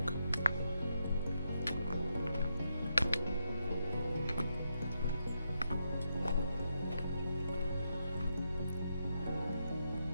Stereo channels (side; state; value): both; inverted; correlation -0.82